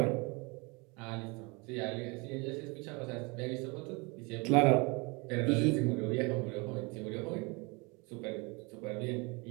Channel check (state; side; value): quieter; left; 28.7 dB